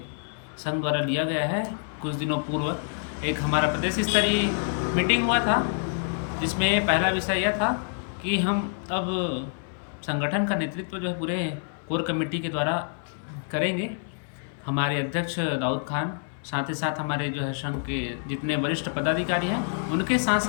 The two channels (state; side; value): silent; right; 60 dB below the other